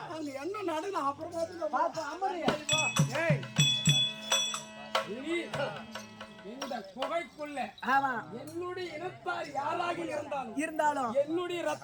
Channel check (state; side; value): identical; both; correlation 1.00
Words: அங்க என்ன நடக்கும் அப்புறமா இந்த குகைக்குள்ள என்னுடைய இனத்தார் யாராக இருந்தாலும் என்னுடைய